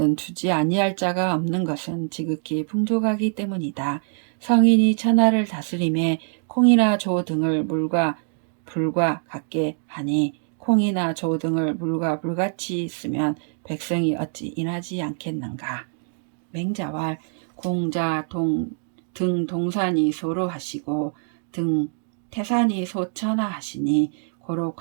주지 아니할 자가 없는 것은 지극히 풍족하기 때문이다. 성인이 천하를 다스림에 콩이나 조 등을 물과 불과 같게 하니 콩이나 조 등을 물과 불같이 쓰면 백성이 어찌 인하지 않겠는가. 맹자왈 공자 등 동산이 소로 하시고 등 태산이 소천하 하시니 고로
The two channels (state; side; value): silent; left; 58 dB below the other